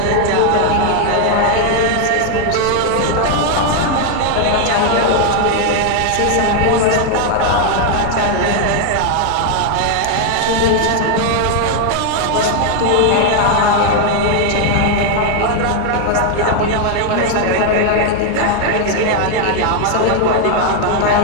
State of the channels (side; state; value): both; different; correlation 0.00